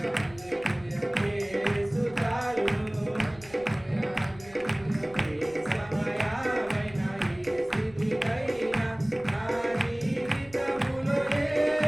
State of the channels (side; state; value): left; noise; rumble, 21 dB below the sound